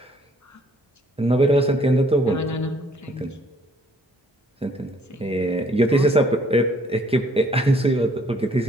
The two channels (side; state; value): both; normal; correlation 0.63